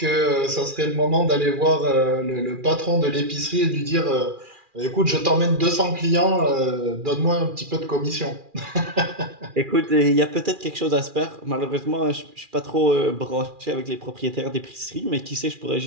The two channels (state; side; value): late; left; 2.4 ms